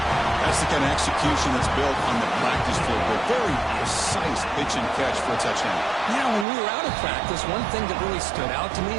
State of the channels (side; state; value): left; drops out; at 6.5 s